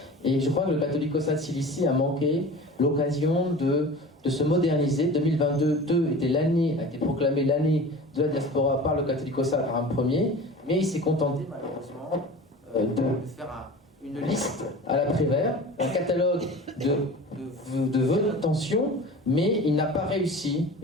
Et je crois que le Catholicosat de Cilicie a manqué l'occasion de se moderniser. 2022 a été proclamé l'année de la diaspora par le Catholicosat par un premier, mais il s'est contenté malheureusement de faire une liste à la Prévert, un catalogue de vœux d'intention, mais il n'a pas réussi,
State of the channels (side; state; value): both; normal; correlation 0.37